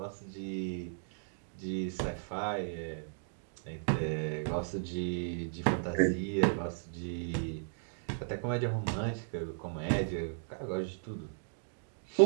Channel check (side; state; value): left; silent; digital silence